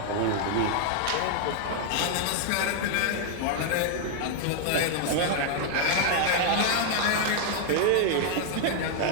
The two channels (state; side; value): different; both; correlation 0.00